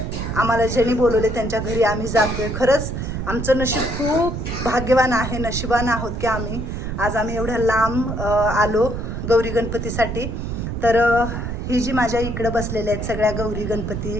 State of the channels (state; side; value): noise; right; rumble, 4 dB below the sound